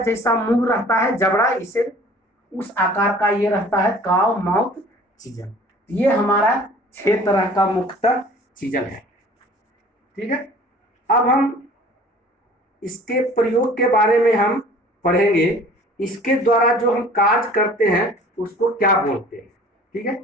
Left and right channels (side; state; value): both; normal; correlation 0.48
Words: जैसा मुंह रहता है जबड़ा, इसे उस आकार का ये रहता है काव माउथ चीजल। ये हमारा 6 तरह का मुख्यतः चीजल है। ठीक है, अब हम इसके प्रयोग के बारे में हम पढ़ेंगे। इसके द्वारा जो हम कार्य करते हैं उसको क्या बोलते हैं। ठीक है,